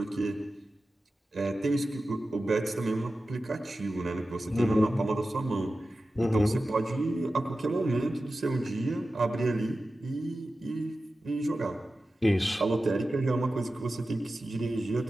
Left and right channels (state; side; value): normal; both; correlation 0.94